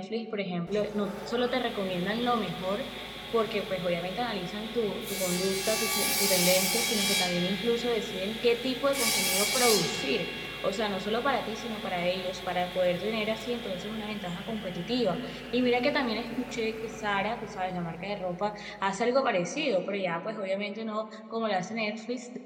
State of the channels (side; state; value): both; identical; correlation 1.00